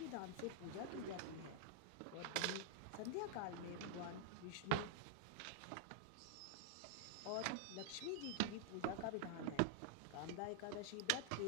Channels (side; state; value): both; different; correlation -0.01